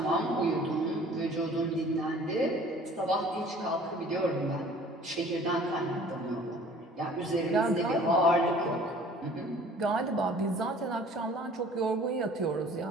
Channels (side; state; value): both; normal; correlation 0.50